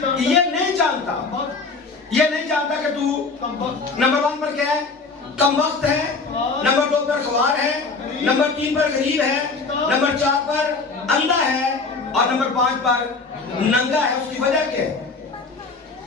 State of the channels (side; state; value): right; quieter; 4.2 dB